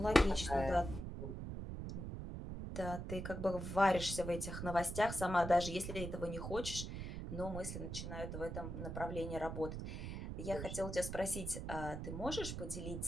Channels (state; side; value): noise; right; rumble, 6 dB below the sound